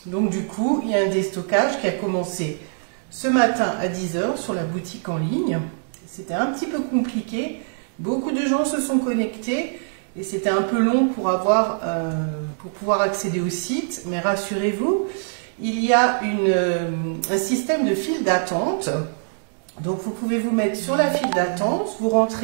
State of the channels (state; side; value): silent; left; digital silence